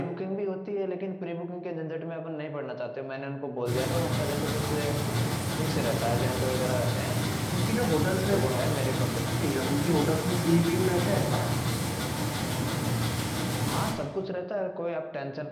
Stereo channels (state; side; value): identical; both; correlation 1.00